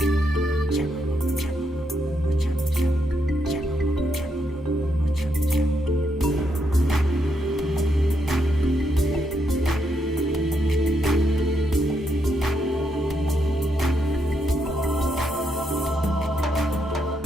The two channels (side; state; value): both; normal; correlation 0.79